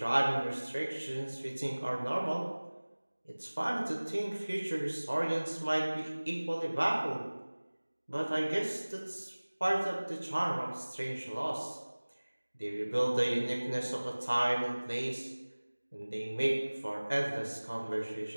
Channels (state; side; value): inverted; both; correlation -1.00